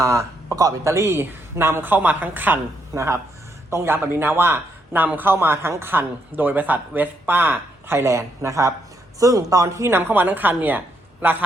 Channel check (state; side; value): normal; both; correlation 0.77